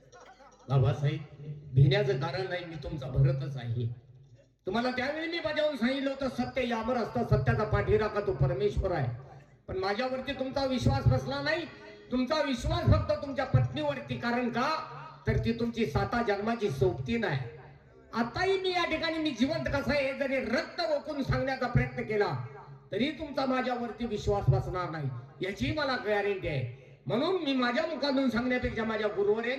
बाबासाहेब, भिण्याचं कारण नाही, मी तुमचा भरतच आहे. तुम्हाला त्यावेळी मी बजावून सांगितलं होतं, सत्य यावर असतं, सत्याचा पाठीराखा तो परमेश्वर आहे. पण माझ्यावरती तुमचा विश्वास बसला नाही. तुमचा विश्वास फक्त तुमच्या पत्नीवरती. कारण का, तर ती तुमची 7 जन्माची सोबती नाही. आताही मी या ठिकाणी मी जिवंत कसा आहे जरी रक्त ओकून सांगण्याचा प्रयत्न केला तरी तुमचा माझ्यावरती विश्वास बसणार नाही, याची मला गॅरंटी आहे. म्हणून मी माझ्या मुखातून सांगण्यापेक्षा माझ्या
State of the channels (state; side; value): identical; both; correlation 1.00